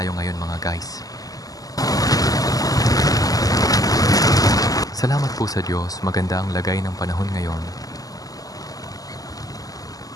ngayon, mga guys. Salamat po sa Diyos, maganda ang lagay ng panahon ngayon.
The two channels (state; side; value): late; right; 0.17 ms